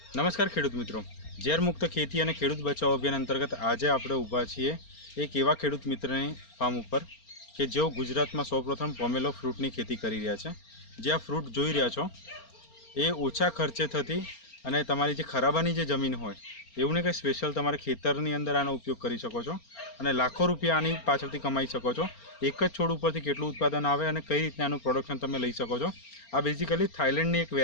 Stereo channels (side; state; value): right; late; 4.3 ms